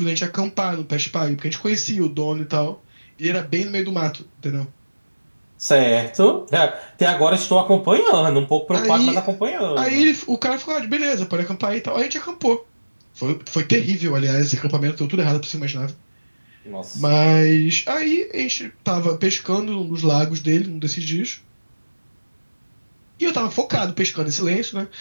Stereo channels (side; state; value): both; inverted; correlation -1.00